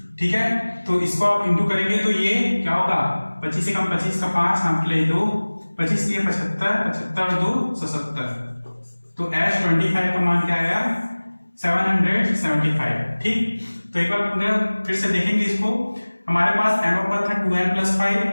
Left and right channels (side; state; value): both; inverted; correlation -1.00